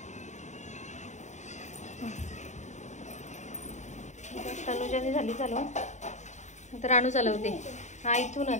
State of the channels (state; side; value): late; right; 0.34 ms